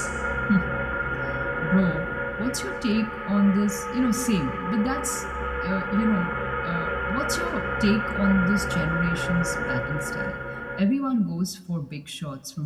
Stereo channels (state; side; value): identical; both; correlation 1.00